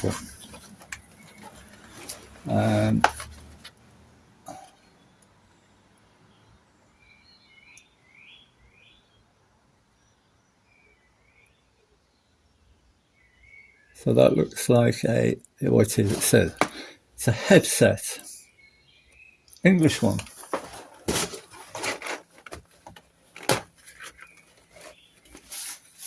So that looks like what it says. It's a headset. English one.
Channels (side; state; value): both; identical; correlation 1.00